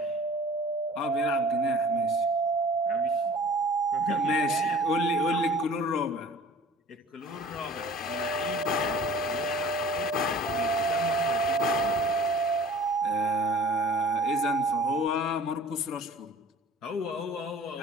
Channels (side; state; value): both; normal; correlation 0.46